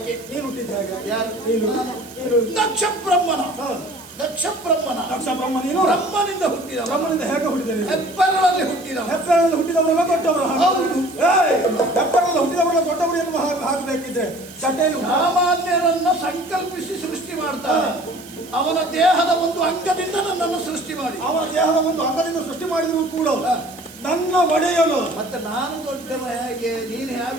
ನೀನು ಹುಟ್ಟಿದ್ದೆ ಹೇಗೆ? ಯಾರು? ನೀನು ದಕ್ಷ ಬ್ರಹ್ಮನ. ಹಾ. ದಕ್ಷ ಬ್ರಹ್ಮನ. ದಕ್ಷ ಬ್ರಹ್ಮ ನೀನು ಬ್ರಹ್ಮನಿಂದ ಹುಟ್ಟಿದವ. ಬ್ರಹ್ಮನಿಂದ ಹೇಗೆ ಹುಟ್ಟಿದೆ ನೀನು? ಹೆಬ್ಬೆರಳಲ್ಲಿ ಹುಟ್ಟಿದವ. ಹೆಬ್ಬೆರಳಲ್ಲಿ ಹುಟ್ಟಿದವರೆಲ್ಲ ದೊಡ್ಡವರು. ಹೌದು. ಹೆಬ್ಬೆರಳಲ್ಲಿ ಹುಟ್ಟಿದವರೆಲ್ಲ ದೊಡ್ಡವರು ಎನ್ನುವ ಹಾಕಬೇಕಿದ್ರೆ ಚಟೆಯಲ್ಲಿ ಸಾಮಾನ್ಯರನ್ನ ಸಂಕಲ್ಪಿಸಿ ಸೃಷ್ಟಿ ಮಾಡ್ತಾನೆ. ಅವನ ದೇಹದ ಒಂದು ಅಂಗದಿಂದ ನನ್ನನ್ನು ಸೃಷ್ಟಿ ಮಾಡಿ, ಅವನ ದೇಹದ ಒಂದು ಅಂಗದಿಂದ ಸೃಷ್ಟಿ ಮಾಡಿದ್ರು ಕೂಡ ನನ್ನ ಒಡೆಯಲು ಮತ್ತೆ ನಾನು ದೊಡ್ಡವ ಹೇಗೆ, ನೀನು ಹೇಗೆ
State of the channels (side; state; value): right; noise; hiss, 19 dB below the sound